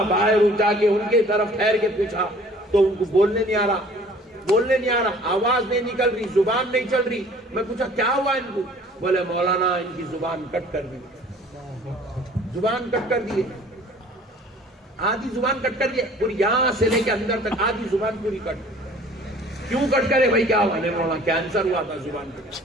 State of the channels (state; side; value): normal; both; correlation 0.51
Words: باہر جا کے ان کے طرف ٹھہر کے پوچھا تو ان کو بولنے نہیں آ رہا، آواز نہیں نکل رہی، زبان نہیں چل رہی۔ میں پوچھا کیا ہوا ان کو، بولے مولانا ان کی زبان کٹ کر دی، زبان کٹ کر دیے، آدھی زبان کٹ کر دیے، پوری یہاں سے لے کے اندر تک آدھی زبان پوری کٹ۔ کیوں کٹ کرے بھائی، کیا ہوا؟ نہیں مولانا کینسر ہوا تھا زبان کو۔